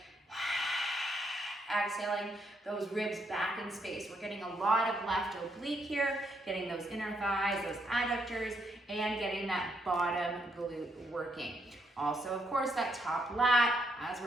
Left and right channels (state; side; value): normal; both; correlation 0.76